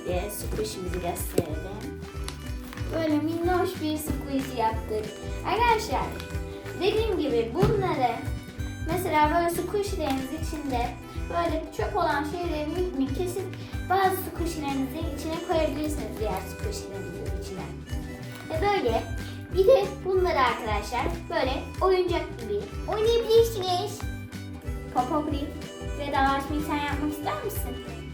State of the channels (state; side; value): identical; both; correlation 1.00